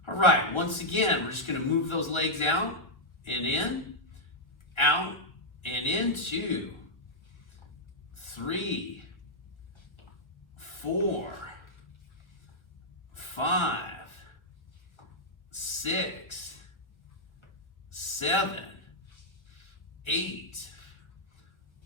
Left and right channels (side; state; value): right; late; 1.6 ms